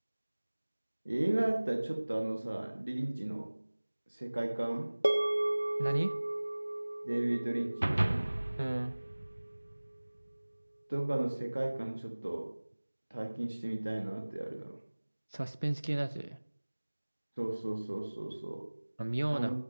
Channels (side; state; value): both; inverted; correlation -1.00